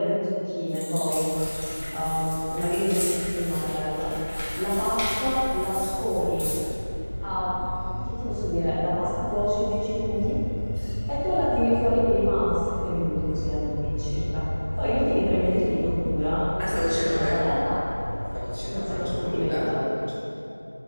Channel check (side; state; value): both; inverted; correlation -1.00